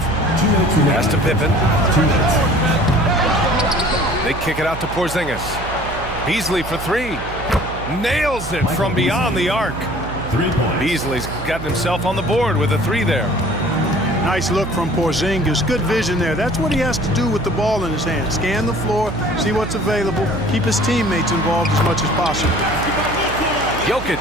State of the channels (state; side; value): noise; right; hum, 10 dB below the sound